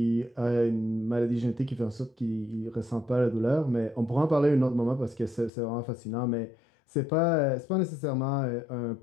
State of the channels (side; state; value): right; drops out; at 5.5 s